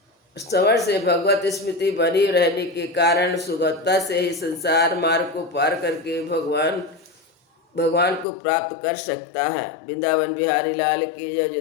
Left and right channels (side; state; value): right; drops out; at 8.2 s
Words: श्रवण से भगवत स्मृति बनी रहने के कारण सुगमता से ही संसार मार्ग को पार करके भगवान को प्राप्त कर सकता है। वृंदावन बिहारी लाल की जय।